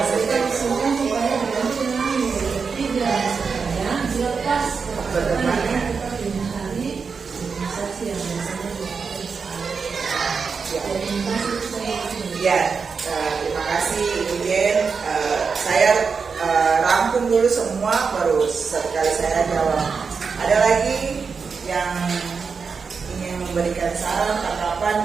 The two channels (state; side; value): quieter; left; 5.4 dB